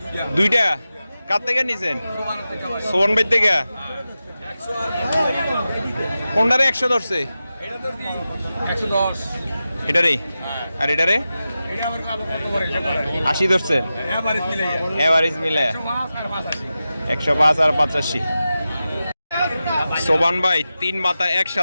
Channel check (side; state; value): both; inverted; correlation -0.93